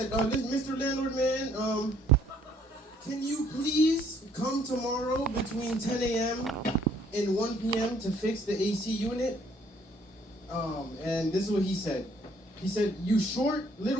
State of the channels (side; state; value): both; normal; correlation 0.63